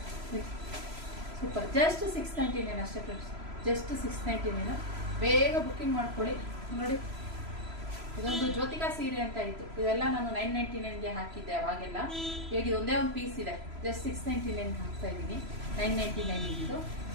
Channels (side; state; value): left; late; 3.0 ms